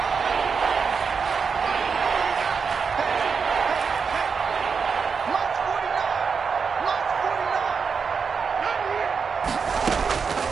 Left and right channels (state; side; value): quieter; left; 5.7 dB